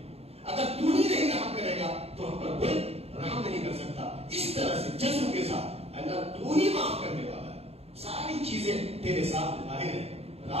اگر تو ہی نہیں رحم کرے گا تو ہم پر کوئی رحم نہیں کر سکتا. اس طرح سے جذب کے ساتھ اللہ تو ہی معاف کرنے والا ہے. ساری چیزیں تیرے سامنے ظاہر ہیں,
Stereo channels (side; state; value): left; late; 0.29 ms